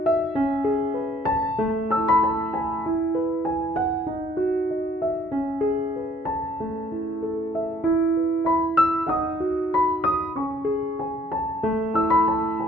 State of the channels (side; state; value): both; normal; correlation 0.62